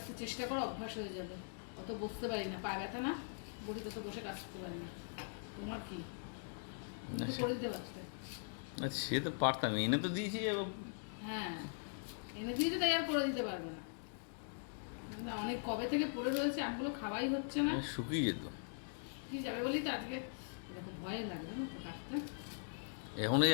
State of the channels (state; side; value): silent; right; digital silence